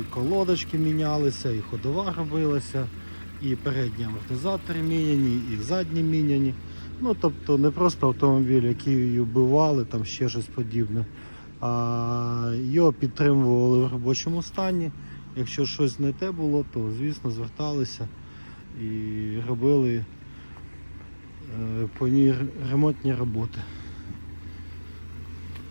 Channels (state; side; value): inverted; both; correlation -1.00